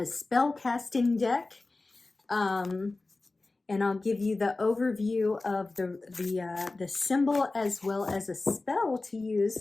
spell casting deck. And I'll give you the overview of the symbol as well as a spell to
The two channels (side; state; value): right; quieter; 3.3 dB